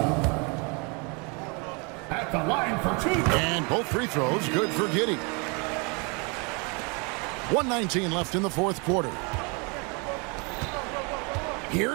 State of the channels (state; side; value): quieter; left; 32.0 dB